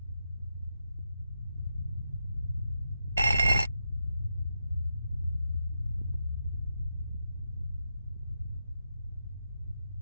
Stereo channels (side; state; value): both; inverted; correlation -0.85